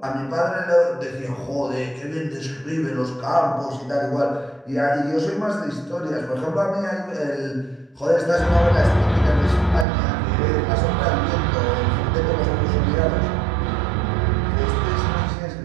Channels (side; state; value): left; drops out; at 9.9 s